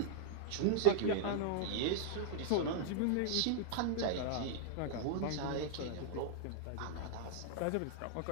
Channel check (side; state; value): both; different; correlation -0.01